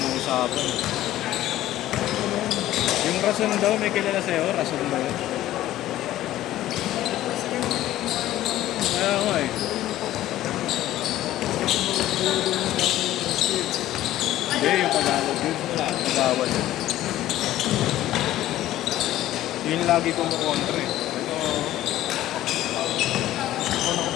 ng usapan. Yung rason daw, may kilala sa'yo? Rason ba yun? Kaya nga eh. Hindi, yung Tagalog yun. Nagawal yun. Yun lagi kumukontra eh. Ako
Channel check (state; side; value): quieter; right; 14.2 dB